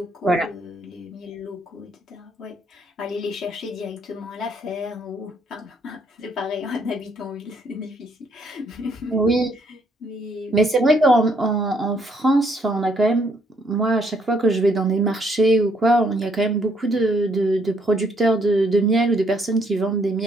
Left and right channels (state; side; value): normal; both; correlation 0.69